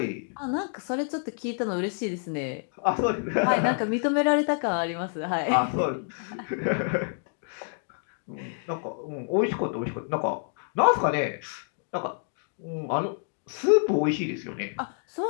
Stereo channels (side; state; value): right; silent; 56 dB below the other